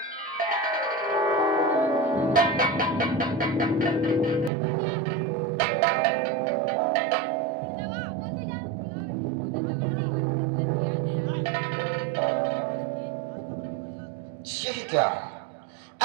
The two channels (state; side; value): drops out; left; at 4.5 s